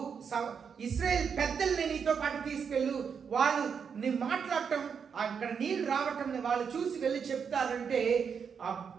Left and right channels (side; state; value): left; quieter; 6.6 dB